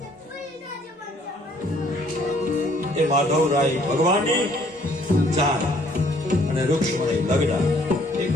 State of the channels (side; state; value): both; normal; correlation 0.62